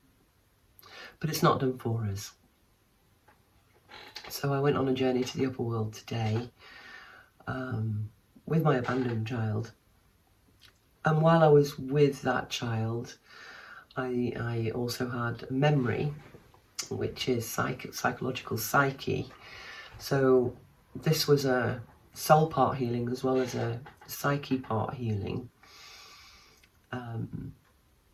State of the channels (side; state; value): both; identical; correlation 1.00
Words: but it's not done for us. So I went on a journey to the upper world today with my abandoned child, and while I was with that child, I also had a memory, which is psychological psyche. So this was a soul part healing as well as a psyche part healing.